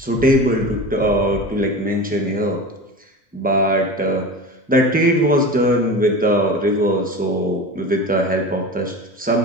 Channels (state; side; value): normal; both; correlation 0.31